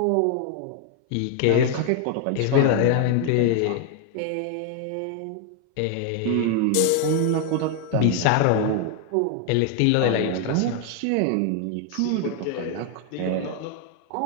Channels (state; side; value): different; both; correlation 0.00